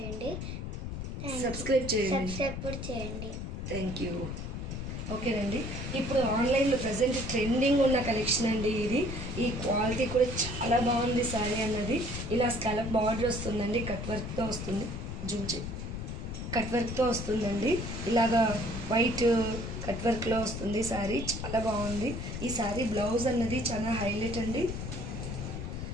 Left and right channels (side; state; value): left; noise; rumble, 6 dB below the sound